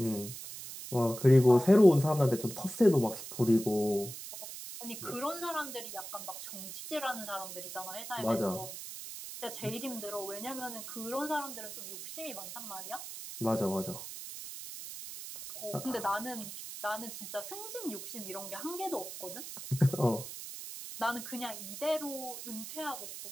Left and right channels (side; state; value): right; noise; hiss, 10 dB below the sound